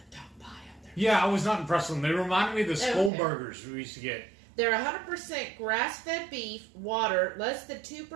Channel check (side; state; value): left; drops out; at 3.1 s